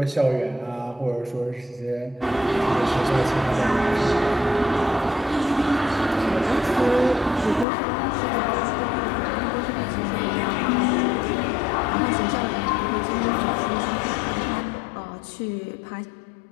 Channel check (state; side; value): drops out; right; at 7.7 s